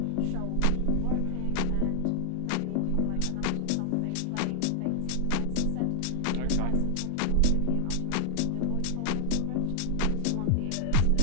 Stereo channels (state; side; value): different; both; correlation 0.00